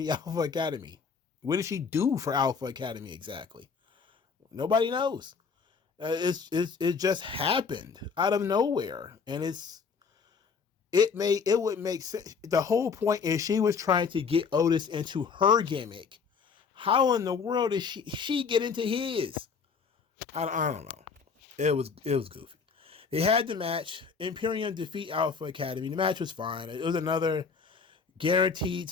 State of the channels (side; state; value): right; quieter; 5.6 dB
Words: Alpha Academy? What did she do for Alpha Academy exactly? Nobody knows. It just happened out of nowhere, and it would make sense. The whole point is she was trying to get Otis into her gimmick. How in the world did she get into his? I don't know. It was goofy. They had the match. Imperium defeat Alpha Academy. The match was fine. It was another guaranteed